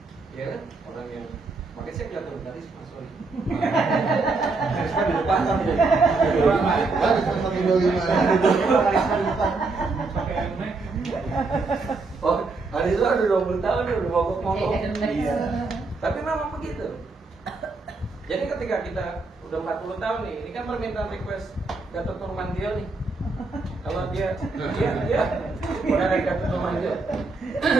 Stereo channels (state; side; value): quieter; left; 3.8 dB